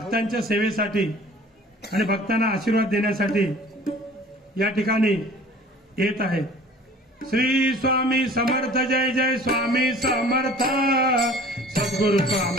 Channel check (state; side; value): normal; both; correlation 0.47